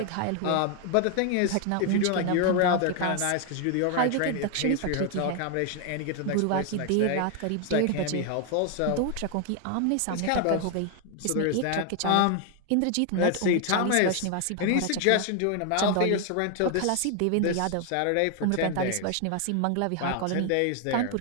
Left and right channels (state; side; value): different; both; correlation 0.01